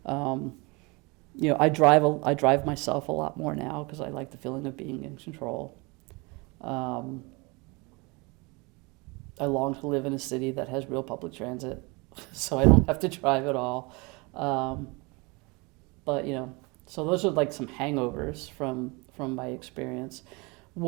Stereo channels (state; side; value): quieter; left; 27.2 dB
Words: I drive myself a lot more now because I like the feeling of being in control. I long to live in a city that has real public transit, so I don't have to drive at all. But so those are like some hangovers from my experience.